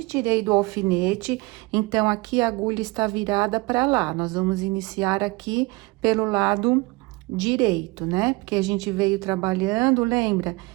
tirei do alfinete, então, aqui a agulha está virada para lá. Nós vamos iniciar aqui pelo lado direito, né? Porque a gente veio trabalhando, lembra?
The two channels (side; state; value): left; quieter; 24.5 dB